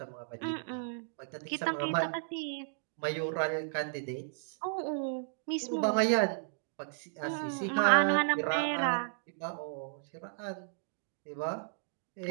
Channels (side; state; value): left; silent; digital silence